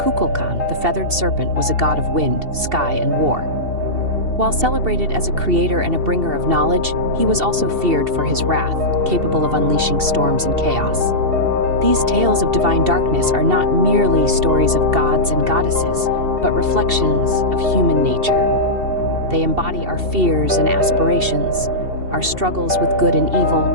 the feathered serpent, was a god of wind, sky, and war. While celebrated as a creator and a bringer of knowledge, he was also feared for his wrath, capable of unleashing storms and chaos. These tales of divine darkness are not merely stories of gods and goddesses, but reflections of human nature. They embody our fears and aspirations, our struggles with good and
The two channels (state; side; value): late; left; 2.7 ms